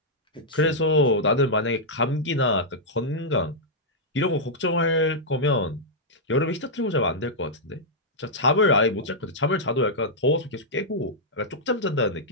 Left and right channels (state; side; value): normal; both; correlation -0.08